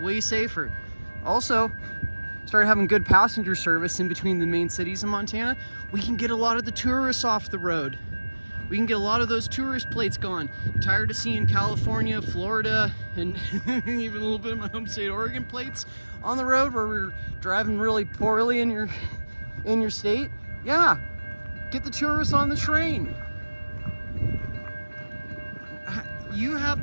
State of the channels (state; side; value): inverted; both; correlation -1.00